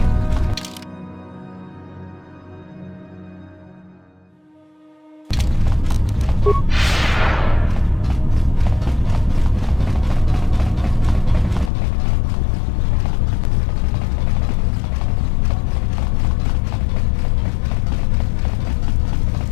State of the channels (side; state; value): right; drops out; at 11.7 s